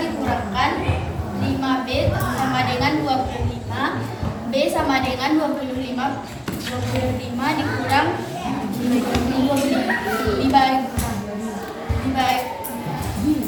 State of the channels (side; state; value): both; identical; correlation 1.00